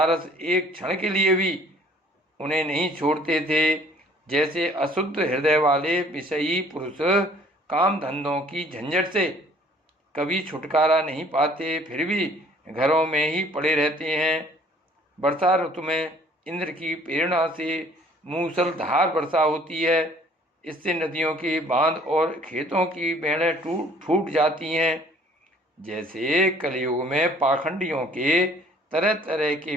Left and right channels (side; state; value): both; normal; correlation 0.56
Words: एक क्षण के लिए भी उन्हें नहीं छोड़ते थे। जैसे अशुद्ध हृदय वाले विषयी पुरुष काम धंधों की झंझट से कभी छुटकारा नहीं पाते, फिर भी घरों में ही पड़े रहते हैं। वर्षा ऋतु में इंद्र की प्रेरणा से मूसलधार वर्षा होती है। इससे नदियों के बांध और खेतों की बेड़ें फूट जाती हैं। जैसे कलयुग में पाखंडियों के तरह तरह के